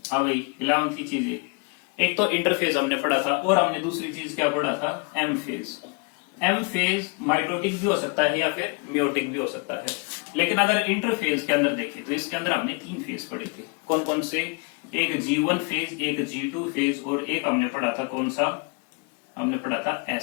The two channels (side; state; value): right; quieter; 32.6 dB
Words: हाँ भाई, 11वीं की चीजें। एक तो इंटरफेज हमने पढ़ा था और हमने दूसरी चीज क्या पढ़ा था? M phase. M phase mitotic भी हो सकता है या फिर मियोटिक भी हो सकता है, लेकिन अगर इंटरफेज के अंदर देखें तो इसके अंदर हमने तीन फेज पढ़े थे। कौन कौन से? एक G1 फेज, एक G2 फेज और एक हमने पढ़ा था, कौन सा? हमने पढ़ा था